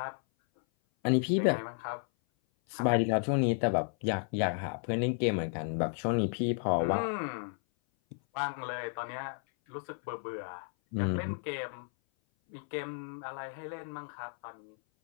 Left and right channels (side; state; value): right; silent; 56 dB below the other